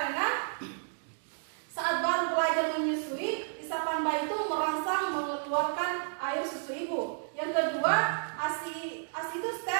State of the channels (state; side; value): silent; left; digital silence